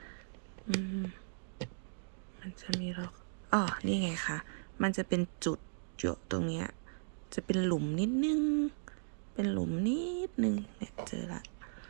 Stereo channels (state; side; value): silent; left; digital silence